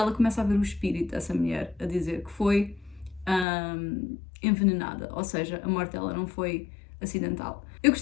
começa a ver o espírito dessa mulher a dizer que foi envenenada, ou seja, a morte dela não foi acidental. Eu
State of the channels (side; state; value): right; drops out; at 3.5 s